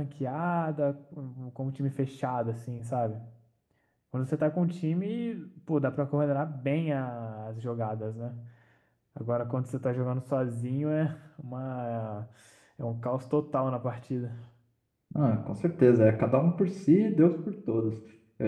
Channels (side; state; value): both; identical; correlation 1.00